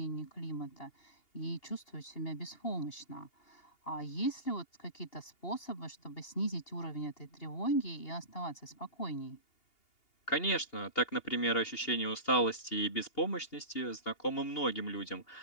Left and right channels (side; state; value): right; late; 2.8 ms